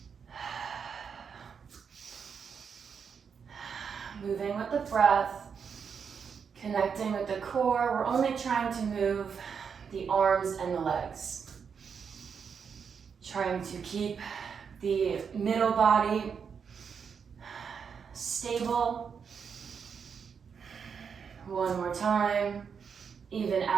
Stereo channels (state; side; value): quieter; left; 6.5 dB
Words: Moving with the breath. Connecting with the core. We're only trying to move the arms and the legs. Trying to keep the middle body stable. One more time. Even